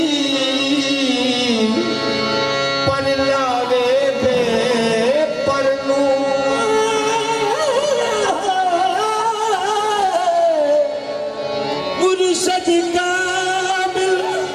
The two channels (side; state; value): both; identical; correlation 1.00